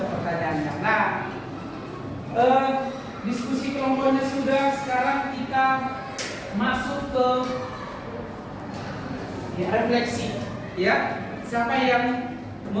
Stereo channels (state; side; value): identical; both; correlation 1.00